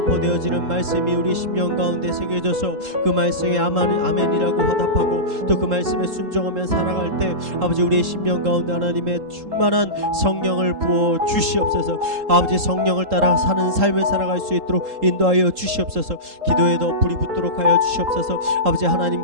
말씀이 우리 심령 가운데 새겨져서 그 말씀에 아멘이라고 화답하고 또 그 말씀에 순종하며 살아갈 때 아버지 우리의 심령 가운데 하나님의 충만한 성령을 부어 주시옵소서. 아버지 성령을 따라 사는 삶을 살아갈 수 있도록 인도하여 주시옵소서. 기도에 더 불이 붙도록 하여 주시옵소서. 아버지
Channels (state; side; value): late; left; 3.7 ms